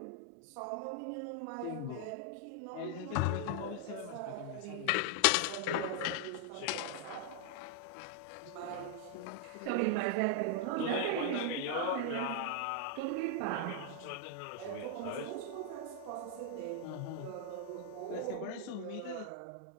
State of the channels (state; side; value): different; both; correlation 0.00